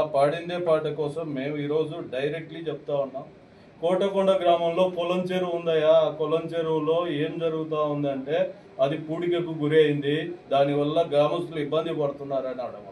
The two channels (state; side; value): identical; both; correlation 1.00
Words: పాడిందే పాట కోసం మేము ఈరోజు డైరెక్ట్లీ చెప్తా ఉన్నాం. కోటకొండ గ్రామంలో కొలం చెరువు ఉందయా, ఆ కొలం చెరువులో ఏం జరుగుతూ ఉందంటే అది పూడికకు గురి అయింది, దానివల్ల గ్రామస్తులు ఇబ్బంది పడుతున్నారని అనడం